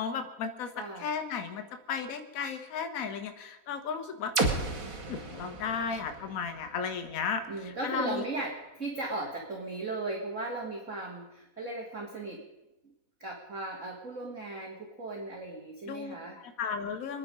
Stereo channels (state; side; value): late; right; 4.1 ms